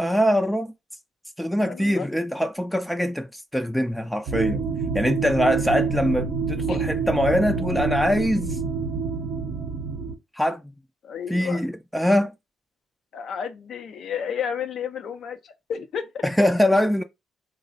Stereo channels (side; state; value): both; normal; correlation 0.83